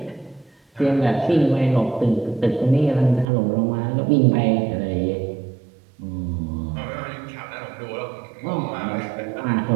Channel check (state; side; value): drops out; left; at 3.2 s